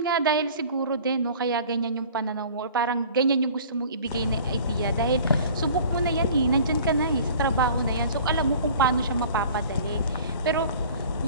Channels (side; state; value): both; inverted; correlation -0.46